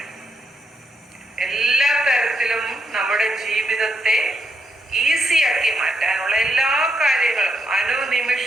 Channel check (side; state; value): both; normal; correlation 0.79